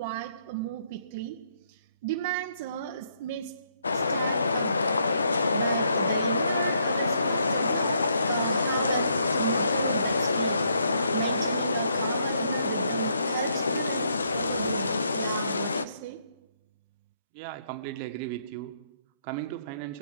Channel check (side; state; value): both; inverted; correlation -0.72